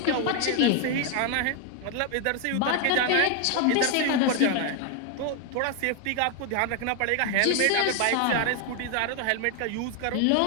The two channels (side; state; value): both; different; correlation 0.01